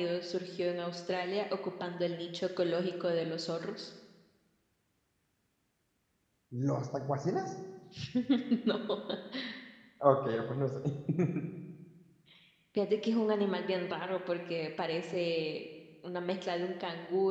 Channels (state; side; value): identical; both; correlation 1.00